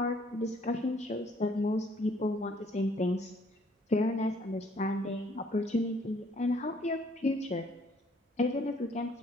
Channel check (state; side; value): normal; both; correlation 0.62